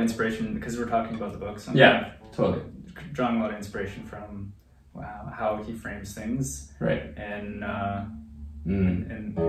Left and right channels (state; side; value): identical; both; correlation 1.00